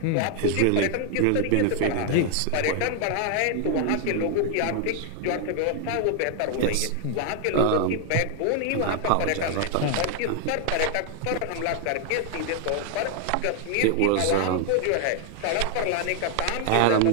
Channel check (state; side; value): different; both; correlation 0.00